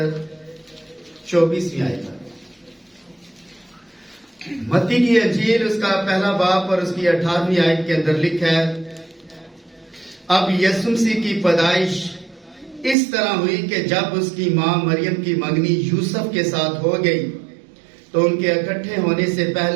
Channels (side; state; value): left; drops out; at 13.0 s